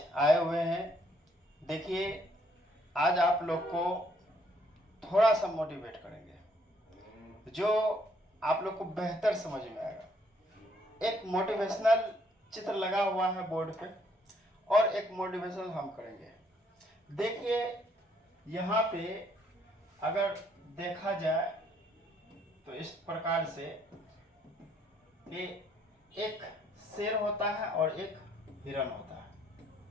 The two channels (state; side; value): normal; both; correlation 0.67